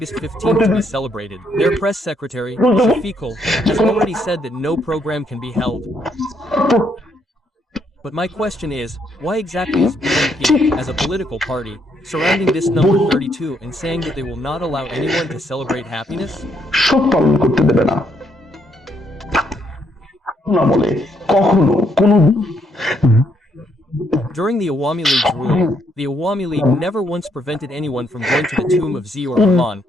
15th to be celebrated. Their press secretary, Shafiqul, has already said that no program can be held. But my question is, why exactly is BNP, as a political party, surrounding this number 32 and saying that they will not allow anyone to celebrate happiness? শোক পালন করতে দেবে না না বলে কখনো কোনো During the Awami League's rule, the Awami League never once prevented anyone from going to the tomb of Ziaur Rahman,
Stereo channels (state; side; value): normal; both; correlation 0.73